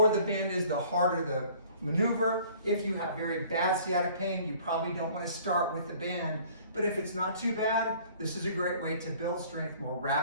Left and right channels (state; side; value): inverted; both; correlation -0.52